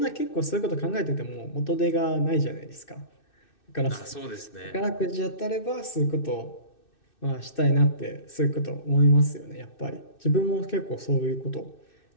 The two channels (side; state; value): right; late; 2.6 ms